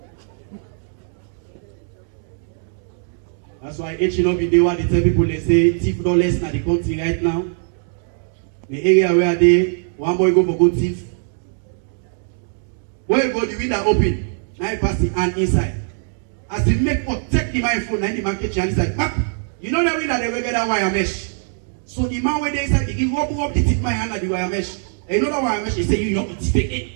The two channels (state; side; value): silent; left; digital silence